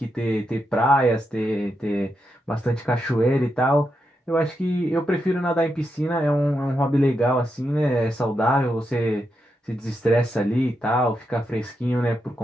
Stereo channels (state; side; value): normal; both; correlation 0.84